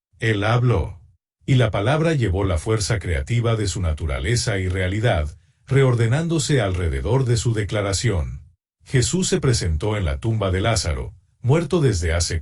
Él habló. Y la palabra llevó la fuerza creativa de su naturaleza y realidad, reordenándose alrededor de su declaración. Jesús se presentó en la tumba de Lázaro, muerto desde hace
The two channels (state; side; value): identical; both; correlation 1.00